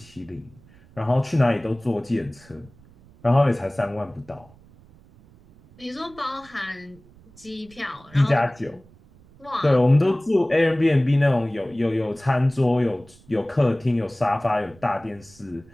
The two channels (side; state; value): right; noise; rumble, 26 dB below the sound